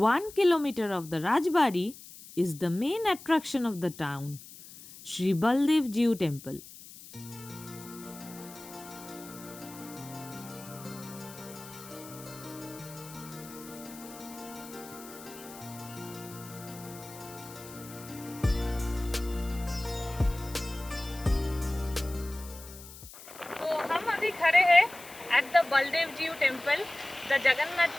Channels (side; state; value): left; noise; hiss, 17 dB below the sound